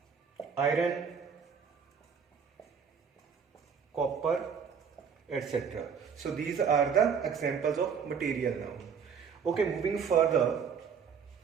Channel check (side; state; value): left; quieter; 6.6 dB